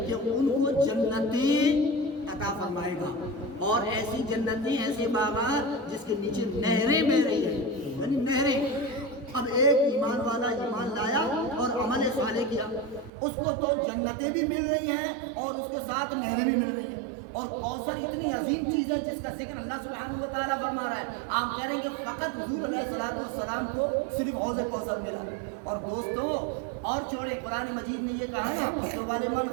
کہ ان کو جنتیں عطا فرمائے گا، اور ایسی جنتیں، ایسے باغات جس کے نیچے نہریں بہ رہی ہیں، یعنی نہریں۔ اب ایک ایمان والا ایمان لایا اور عمل صالح کیا، اس کو تو جنتیں بھی مل رہی ہیں اور اس کے ساتھ نہریں بھی مل رہی ہیں۔ اور کوثر اتنی عظیم چیز ہے جس کا ذکر اللہ سبحانہ و تعالیٰ فرما رہا ہے۔ آپ کہہ رہے ہیں کہ فقط حضور علیہ السلام کو صرف حوض کوثر ملا۔ اور دوستوں اور چھوڑے، قرآن مجید نے یہ کہا نا کہ وَلِمَنْ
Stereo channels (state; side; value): drops out; left; at 13.1 s